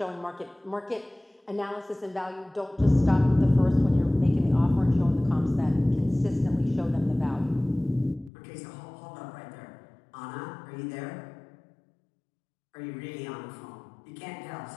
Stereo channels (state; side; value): drops out; right; at 8.3 s